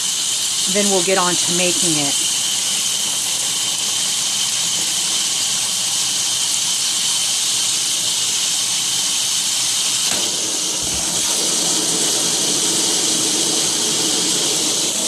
then we'll get on to making it.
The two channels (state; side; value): identical; both; correlation 1.00